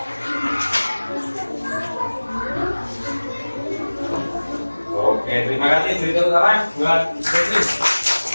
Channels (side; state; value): both; inverted; correlation -1.00